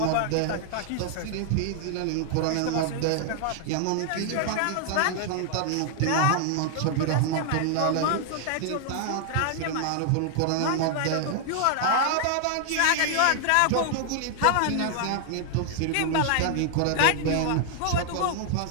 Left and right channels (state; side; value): different; both; correlation 0.00